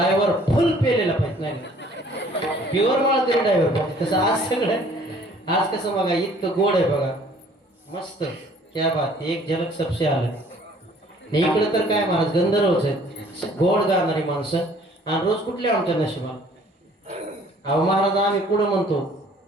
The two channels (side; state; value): both; normal; correlation 0.56